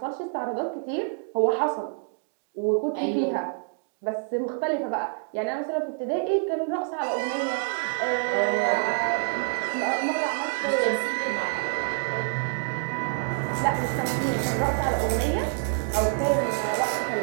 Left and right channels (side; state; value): left; silent; digital silence